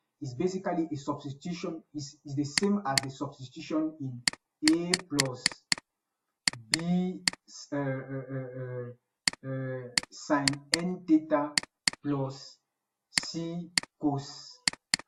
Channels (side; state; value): both; identical; correlation 1.00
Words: is basically a substitution, is the same as the substitution in a plus b sine n theta plus c cos